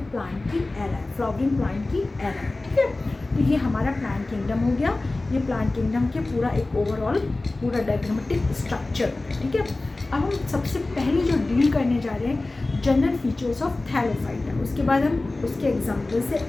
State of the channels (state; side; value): quieter; right; 3.1 dB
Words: प्लांट की एरा है, फ्लावरिंग प्लांट की एरा है, ठीक है। तो ये हमारा प्लांट किंगडम हो गया। ये प्लांट किंगडम के पूरा एक ओवरऑल पूरा डायग्रामेटिक स्ट्रक्चर, ठीक है। अब हम सबसे पहले जो डील करने जा रहे हैं जनरल फीचर्स ऑफ थैलोफाइटा, उसके बाद हम उसके एग्जाम्पल से